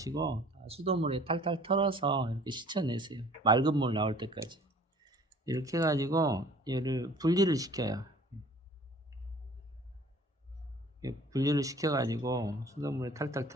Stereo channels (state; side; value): normal; both; correlation 0.50